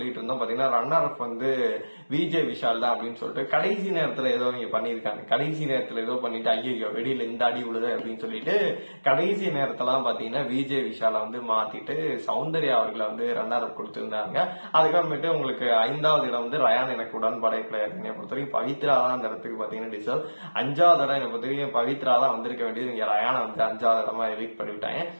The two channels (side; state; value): both; inverted; correlation -1.00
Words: இருந்தோம் பாத்தீங்கன்னா ரன்னர் அப் வந்து விஜய் விஷால் தான் அப்படின்னு சொல்லிட்டு. கடைசி நேரத்துல ஏதோ இங்க பண்ணிருக்காங்க, கடைசி நேரத்துல ஏதோ பண்ணிட்டு ஐயோ வெளியில இந்த அடி விழுது அப்படின்னு சொல்லிட்டு கடைசி நேரத்தெல்லாம் பாத்தீங்கன்னா விஜய் விஷால வந்து மாத்திட்டு சவுண்ட் சௌந்தர்யா அவர்களை வந்து ரன்னர் அப் கொடுத்திருந்தாங்க. அதுக்கப்புறமேட்டு உங்களுக்கு 5வது இடம் வந்து ரயான் எனக்கு உடன்பாடே கிடையாது. என்னை பொறுத்த வரைக்கும் பவித்ரா தான் அந்த இடத்துக்கு பாத்தீங்கன்னா டிசர்வ். 5வது இடம் என்னை பொறுத்த வரைக்கும் பவித்ரா தான் வந்திருக்க வேண்டியது. இங்க ரயானை வந்து 5வது இடமா எவிக்ட் பண்ணிவிட்டாங்க.